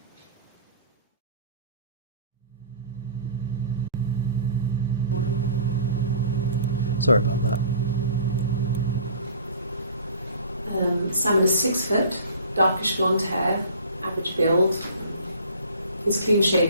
Sorry about that. Simon is 6 foot, darkish blonde hair, average build. He's clean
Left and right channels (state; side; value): inverted; both; correlation -0.45